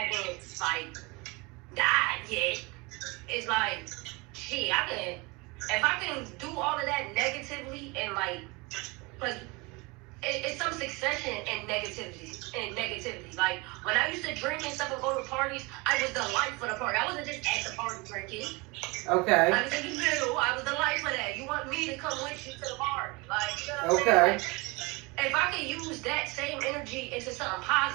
like died yet, it's like, shit, if I can do all of that negatively and like, but it's some succession in negativity. Like, when I used to drink and stuff and go to parties, I was the life for the party. I wasn't just at the party drinking. Okay. I was in the middle. I was the life for that. You want me to come with you to the party. Like, you know what I'm saying? Like, if I could use that same energy into something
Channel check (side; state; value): left; quieter; 26.2 dB